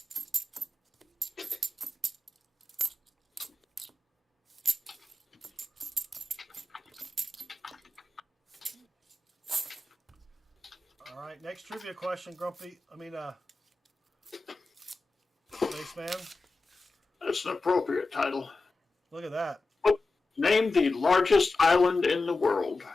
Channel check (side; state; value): right; quieter; 3.1 dB